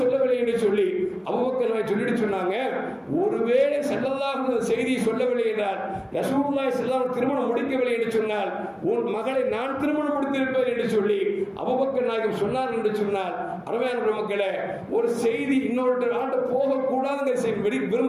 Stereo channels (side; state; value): both; identical; correlation 1.00